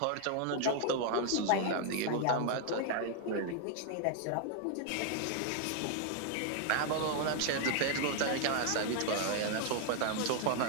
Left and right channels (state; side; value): different; both; correlation 0.00